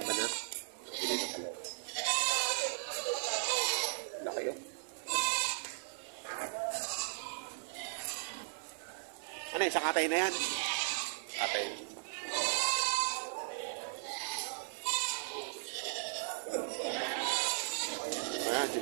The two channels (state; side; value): silent; left; 53 dB below the other